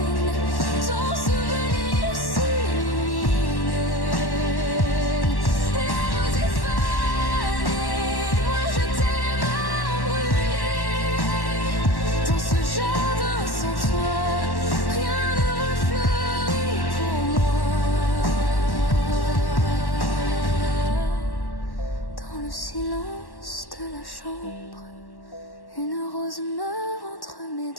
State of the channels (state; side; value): late; right; 1.1 ms